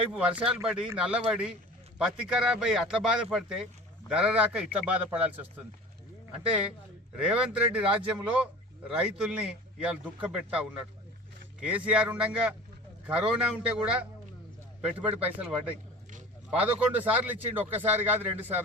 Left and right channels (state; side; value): normal; both; correlation 0.39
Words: వర్షాలు పడి నల్లబడి పత్తి ఖరాబ్ అయ్యి అట్లా బాధపడితే ధర రాక ఇట్లా బాధపడాల్సి వస్తుంది. అంటే రేవంత్ రెడ్డి రాజ్యంలో రైతుల్ని ఇవాళ దుఃఖపెడతా ఉన్నాడు. కేసీఆర్ ఉండగా కరోనా ఉంటే కూడా పెట్టుబడి పైసలు పడ్డాయి. 11 సార్లు ఇచ్చిండు, ఒక్కసారి కాదు 2